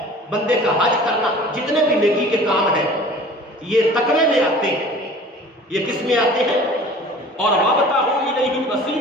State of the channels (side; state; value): both; normal; correlation 0.44